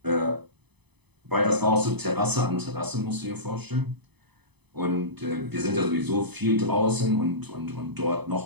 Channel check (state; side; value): late; left; 0.99 ms